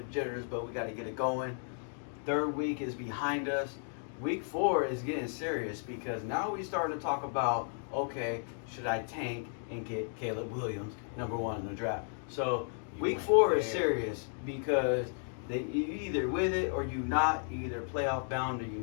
jitters, but we got to get it going. Third week is behind us. Week 4 is getting serious because now we starting to talk about, okay, should I tank and get Caleb Williams, number 1 in the draft? So You week went 4 is there. serious because you either with it or you not, you either playoff bound or you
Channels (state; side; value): silent; right; 55 dB below the other